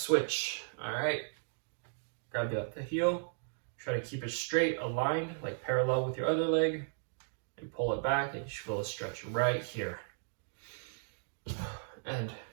all right? Grab the heel. Try to keep it straight, aligned, like parallel with your other leg, and pull it back, and you should feel a stretch right here. And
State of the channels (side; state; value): left; silent; digital silence